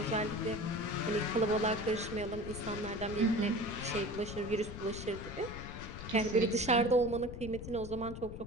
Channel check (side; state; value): left; noise; rumble, 10 dB below the sound